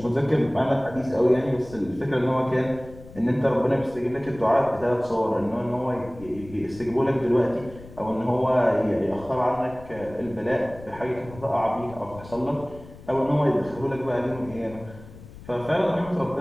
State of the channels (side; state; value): left; noise; rumble, 18 dB below the sound